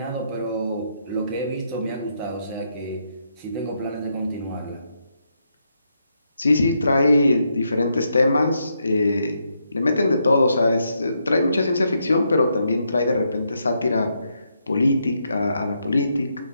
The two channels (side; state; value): both; inverted; correlation -0.79